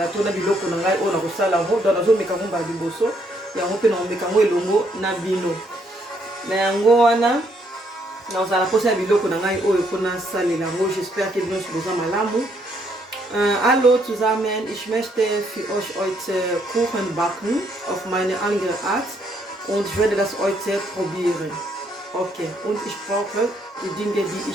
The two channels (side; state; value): both; normal; correlation 0.71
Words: na biloko na ngai oyo na kosala ngo do na zo meka ngo ba liboso yango pe na meka ngo elongo na bino. Na yango wana na osala posa biloko na ngai oyo pona salela ngo. J'espère que bino soza malamu. Hallo zusammen, ich möchte für euch heute Kuchen backen auf meine andere Art und ich werde das heute probieren. Okay, und ich brauche die Dinge, die